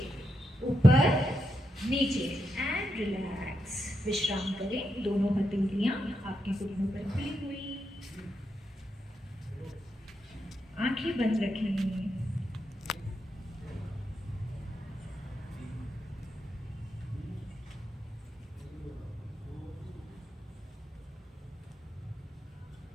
ऊपर नीचे एंड रिलैक्स। विश्राम करें। दोनों हथेलियां आपके घुटनों पर खुली हुई, आंखें बंद रखें।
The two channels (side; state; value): both; normal; correlation 0.84